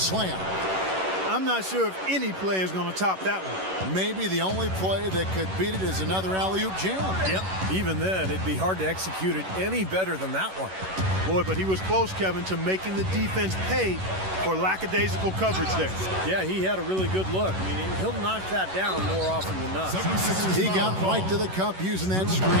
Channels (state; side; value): late; left; 11 ms